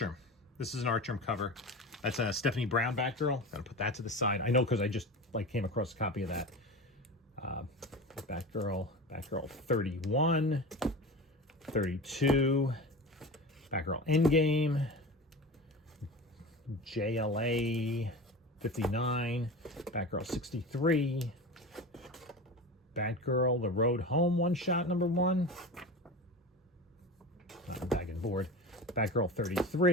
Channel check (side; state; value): both; normal; correlation 0.30